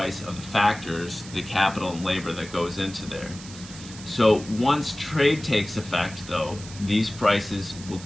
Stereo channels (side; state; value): right; noise; hiss, 15 dB below the sound